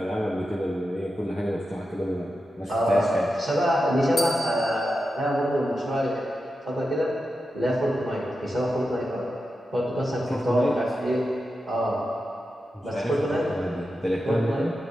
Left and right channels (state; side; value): normal; both; correlation 0.90